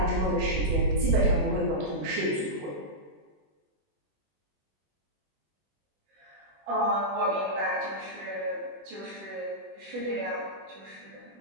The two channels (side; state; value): left; late; 20 ms